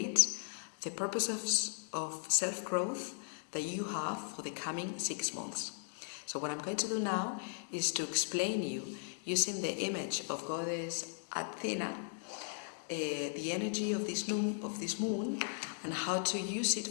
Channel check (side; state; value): right; silent; digital silence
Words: the purposes of self-growth that you have for the coming 6 months. So what I'm going to do now is to explain you, using the image of goddess Athena, the energy of this moon, and how to use it